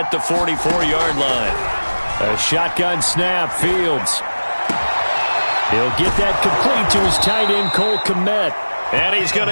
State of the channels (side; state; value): both; inverted; correlation -1.00